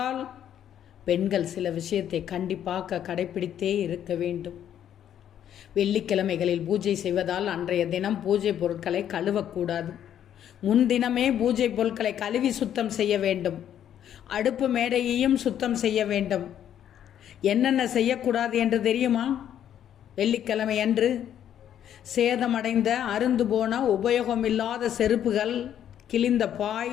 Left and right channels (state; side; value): quieter; right; 10.1 dB